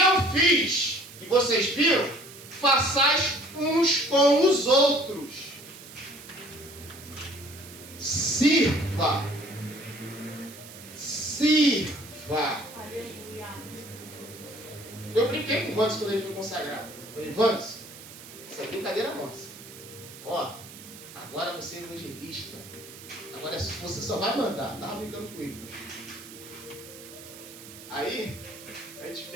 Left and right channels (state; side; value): noise; right; hiss, 16 dB below the sound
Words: fiz, e vocês viram, façais uns com os outros. Sirva. Sirva. Aleluia. Eu brinquei com o Vans quando ele foi consagrado. Eu falei, Vans, essa é brincadeira nossa. Ó, agora você é evangelista. Agora você só vai mandar. Tava brincando com ele. Aí,